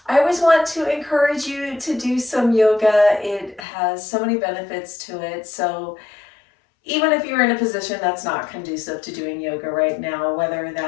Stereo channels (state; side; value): drops out; right; at 3.6 s